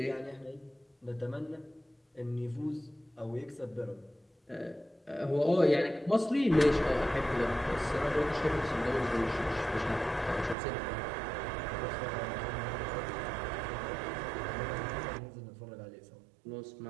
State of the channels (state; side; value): drops out; left; at 10.6 s